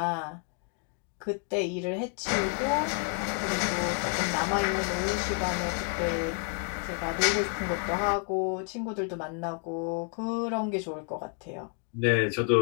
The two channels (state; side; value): quieter; right; 39.3 dB